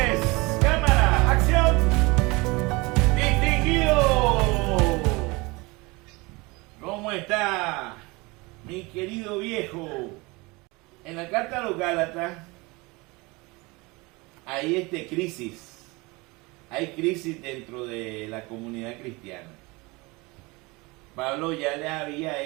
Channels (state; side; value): quieter; left; 24.8 dB